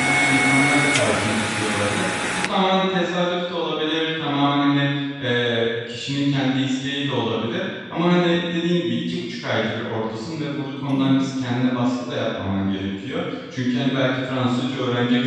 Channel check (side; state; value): both; identical; correlation 1.00